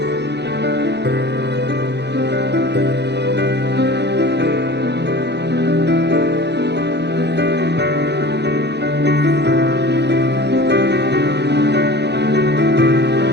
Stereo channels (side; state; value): left; late; 0.50 ms